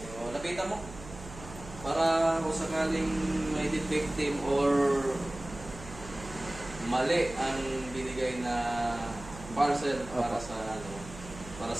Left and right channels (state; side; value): noise; right; hum, 14 dB below the sound